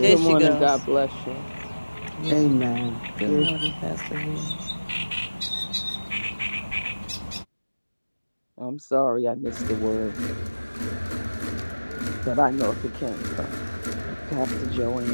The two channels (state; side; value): inverted; both; correlation -1.00